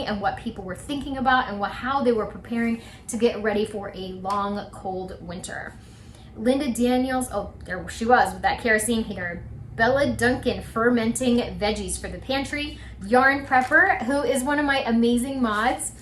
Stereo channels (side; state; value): both; identical; correlation 1.00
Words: and what people were thinking about and how they were preparing to get ready for a long, cold winter. Linda Daniels, oh, there she was with that kerosene heater. Bella Duncan fermenting veggies for the pantry. Yarn Prepper, who is one of my amazing mods,